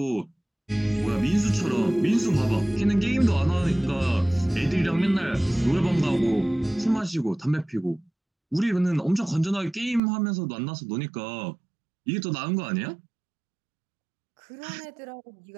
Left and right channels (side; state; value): left; drops out; at 10.0 s